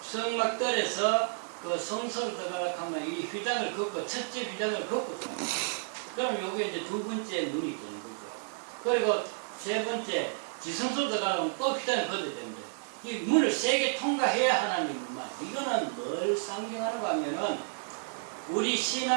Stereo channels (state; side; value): silent; left; 57 dB below the other